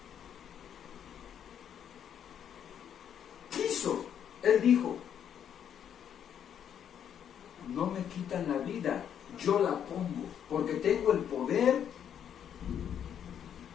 Quiso, Él dijo: no me quitan la vida, yo la pongo, porque tengo el poder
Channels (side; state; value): right; quieter; 9.0 dB